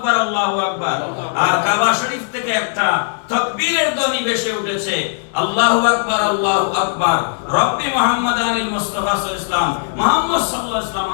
আল্লাহু আকবার, আর কাবা শরীফ থেকে একটা তাকবীরের ধ্বনি ভেসে উঠেছে, আল্লাহু আকবার আল্লাহু আকবার। রব্বি মুহাম্মাদানিল মুস্তাফা সাল্লাল্লাহু আলাইহি ওয়াসাল্লাম, মুহাম্মদ সাল্লাল্লাহু আলাইহি ওয়াসাল্লাম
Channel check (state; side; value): silent; right; 67 dB below the other